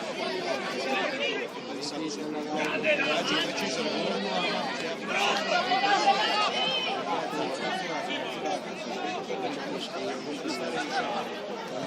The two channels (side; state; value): both; identical; correlation 1.00